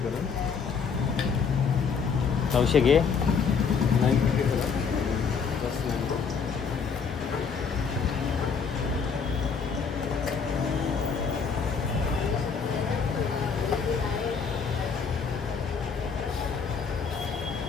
900 घे. 950 करून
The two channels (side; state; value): right; quieter; 5.9 dB